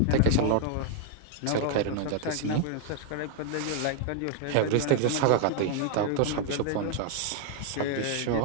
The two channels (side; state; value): both; different; correlation 0.00